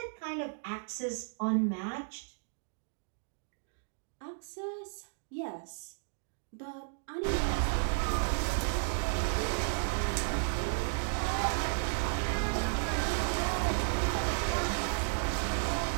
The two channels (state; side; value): silent; left; digital silence